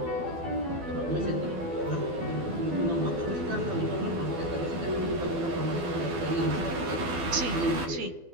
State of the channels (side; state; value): left; late; 12 ms